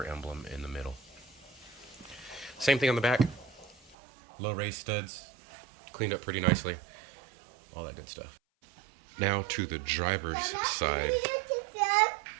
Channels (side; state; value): left; drops out; at 4.0 s